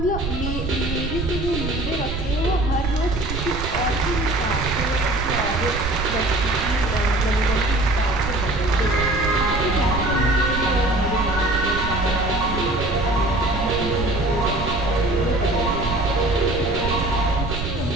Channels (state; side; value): noise; right; rumble, 5 dB below the sound